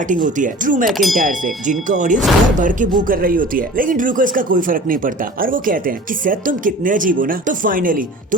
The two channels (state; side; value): normal; both; correlation 0.42